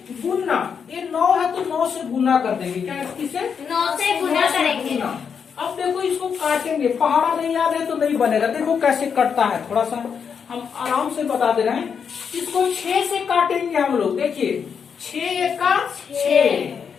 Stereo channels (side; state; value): right; quieter; 6.7 dB